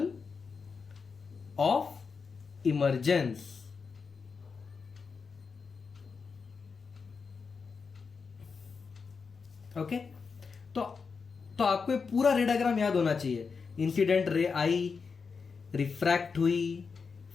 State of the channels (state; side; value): quieter; right; 5.3 dB